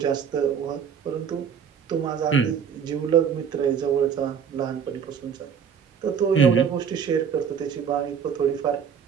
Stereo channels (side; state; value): left; quieter; 7.4 dB